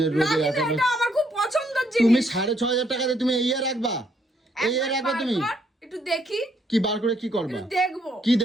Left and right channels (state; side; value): normal; both; correlation 0.71